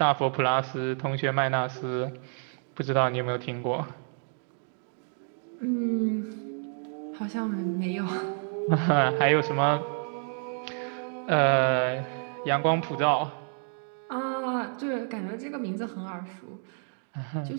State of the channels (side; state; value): left; silent; 58 dB below the other